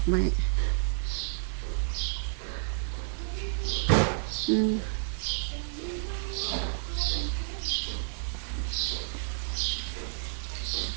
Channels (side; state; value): left; silent; digital silence